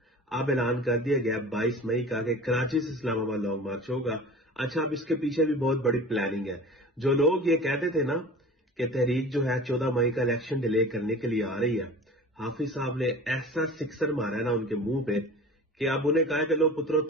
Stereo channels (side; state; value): both; normal; correlation 0.39